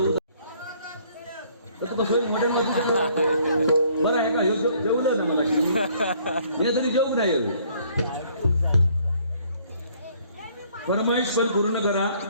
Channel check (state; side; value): inverted; both; correlation -0.62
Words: तर तू कसं मॉडेल बरं आहे का जेवलं ना मला हे तरी जेवू नाही फरमाईश पण पूर्ण करा